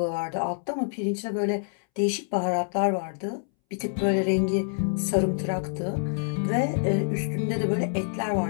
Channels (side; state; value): right; silent; 60 dB below the other